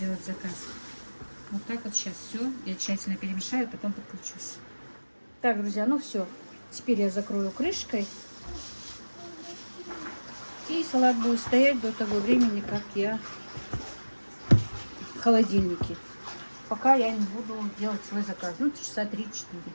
заказ. Вот так вот сейчас все, я тщательно перемешаю, потом подключусь. Так, друзья, ну все, теперь я закрою крышкой. И салат будет стоять до того времени, как я в холодильнике. Пока я не буду делать свой заказ, ну, часа 3-4.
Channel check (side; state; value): both; inverted; correlation -1.00